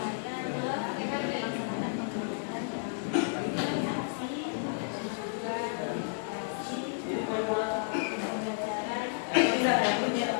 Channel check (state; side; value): silent; right; digital silence